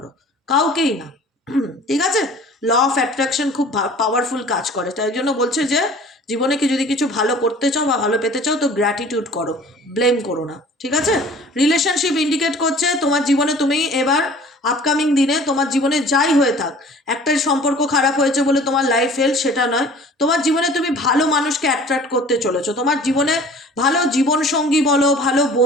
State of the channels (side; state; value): both; normal; correlation 0.48